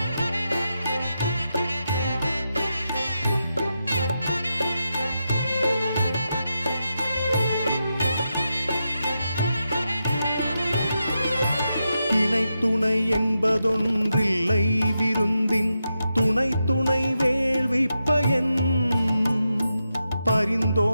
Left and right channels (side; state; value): both; inverted; correlation -0.87